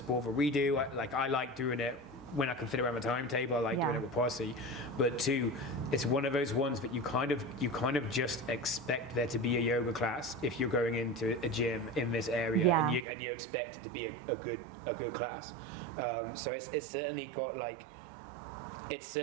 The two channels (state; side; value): drops out; left; at 13.1 s